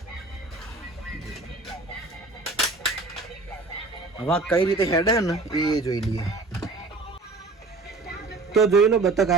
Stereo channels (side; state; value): left; quieter; 3.5 dB